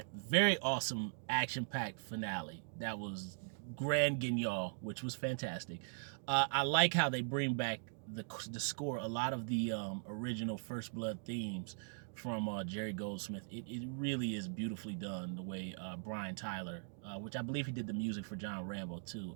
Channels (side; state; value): left; silent; digital silence